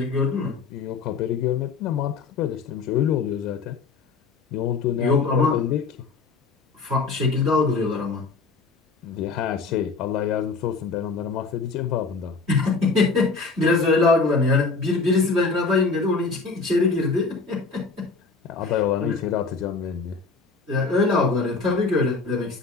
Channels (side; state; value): right; quieter; 4.2 dB